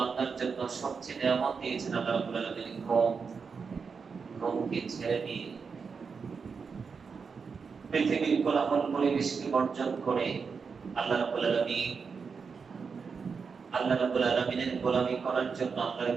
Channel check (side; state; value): left; quieter; 5.5 dB